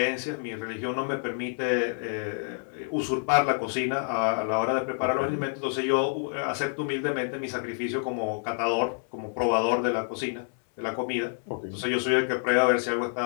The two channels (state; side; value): silent; right; 59 dB below the other